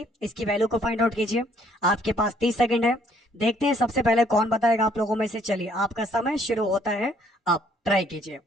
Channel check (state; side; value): normal; both; correlation 0.64